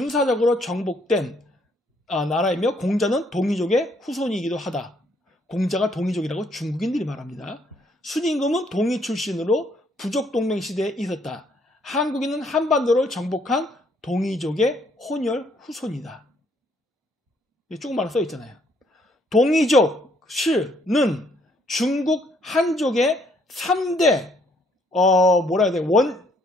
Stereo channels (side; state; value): both; normal; correlation 0.67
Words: 정복된 나라이며 공자는 동이족의 후손이기도 하다. 공자가 동이족이라고 중국인들이 말합니다. 순임금은 동이 출신으로 부족 동맹 시대에 있었다. 한국인은 한반도를 정복한 동이족의 혼혈 후손이다. 조금만 써 있잖아요. 동이족 실은 중국 한족의 3대 뭐라 해야 돼?